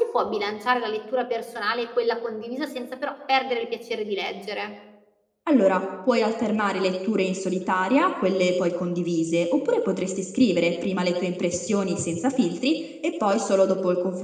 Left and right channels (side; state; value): both; identical; correlation 1.00